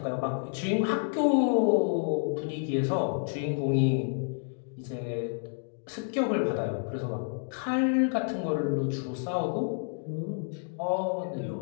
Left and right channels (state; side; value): silent; right; 58 dB below the other